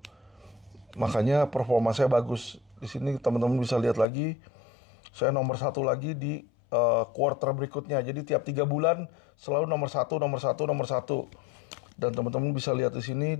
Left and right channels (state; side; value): drops out; right; at 4.0 s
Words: Makanya performa saya bagus. Di sini teman-teman bisa lihat lagi, saya nomor 1 lagi di quarter berikutnya. Jadi tiap 3 bulan selalu nomor 1, nomor 1, nomor 1. Dan teman-teman bisa lihat di sini